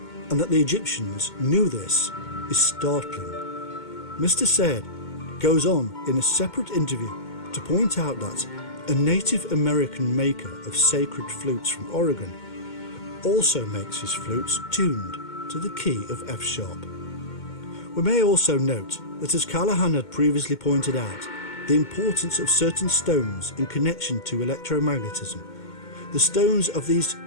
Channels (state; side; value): late; right; 2.2 ms